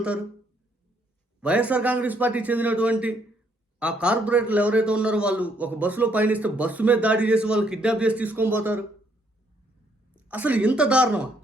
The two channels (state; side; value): normal; both; correlation 0.70